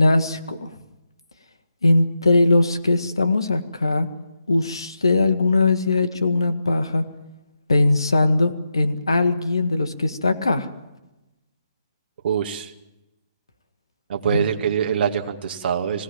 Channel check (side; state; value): both; inverted; correlation -0.84